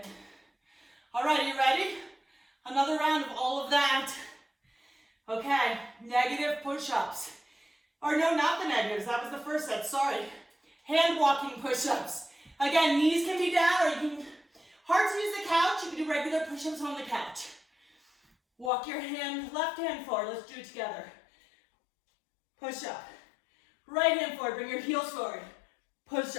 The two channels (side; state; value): right; drops out; at 18.7 s